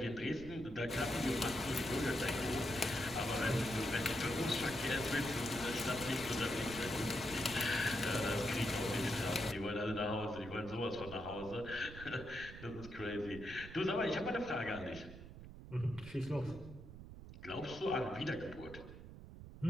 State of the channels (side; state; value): right; noise; rumble, 13 dB below the sound